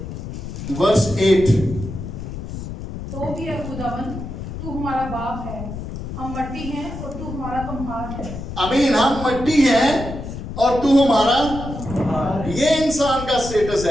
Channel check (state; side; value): noise; left; rumble, 8 dB below the sound